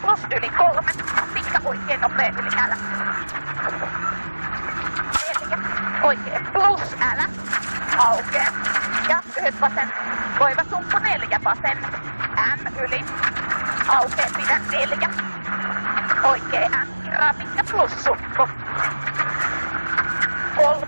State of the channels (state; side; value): inverted; both; correlation -1.00